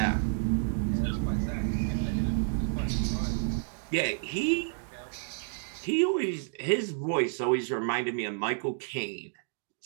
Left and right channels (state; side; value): silent; left; digital silence